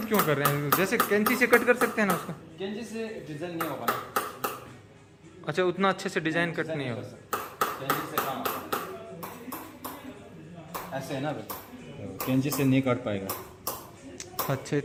क्यों कर रहे हैं? जैसे कैंची से कट कर सकते हैं ना उसको। कैंची से डिजाइन नहीं होगा ना। अच्छा, उतना अच्छे से डिजाइन कट नहीं होगा। कैंची से कहाँ ऐसे है ना, कैंची से नहीं काट पाएगा। अच्छा,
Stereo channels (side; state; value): both; identical; correlation 1.00